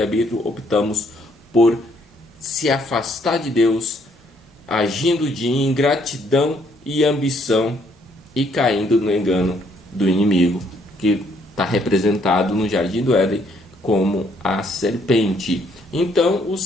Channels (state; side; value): normal; both; correlation 0.68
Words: optamos por se afastar de Deus, agindo de ingratidão e ambição e caindo no engano do inimigo, que está representado no Jardim do Éden como a serpente. Então o